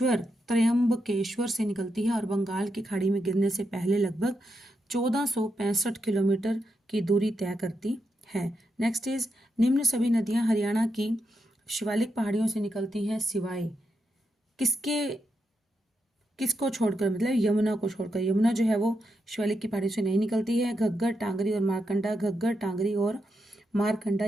से निकलती है और बंगाल की खाड़ी में गिरने से पहले लगभग 1465 किलोमीटर की दूरी तय करती है। नेक्स्ट इज निम्न सभी नदियां हरियाणा की शिवालिक पहाड़ियों से निकलती हैं सिवाय किसको छोड़कर, मतलब यमुना को छोड़कर। यमुना जो है वो शिवालिक की पहाड़ियों से नहीं निकलती है। घग्गर, टांगरी और मारकंडा, घग्गर, टांगरी और मारकंडा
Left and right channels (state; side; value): normal; both; correlation 0.84